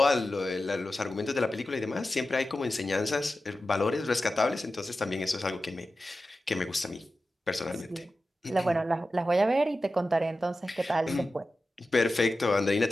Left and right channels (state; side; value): normal; both; correlation 0.93